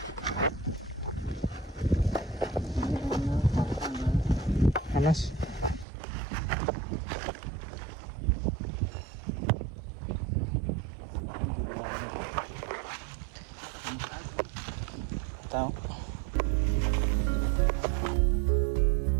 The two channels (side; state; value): left; drops out; at 5.9 s